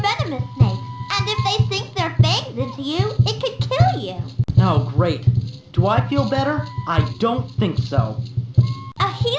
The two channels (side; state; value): both; identical; correlation 1.00